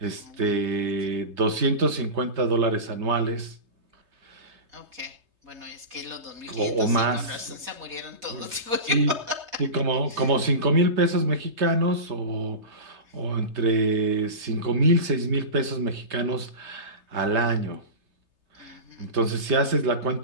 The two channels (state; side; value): late; left; 3.3 ms